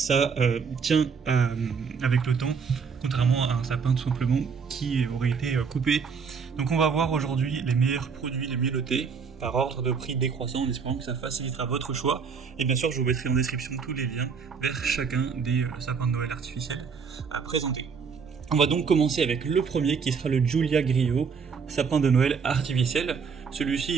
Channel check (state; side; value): quieter; left; 5.9 dB